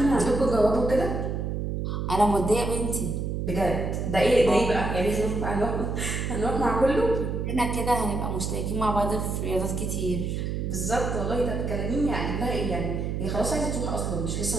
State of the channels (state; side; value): noise; right; hum, 2 dB below the sound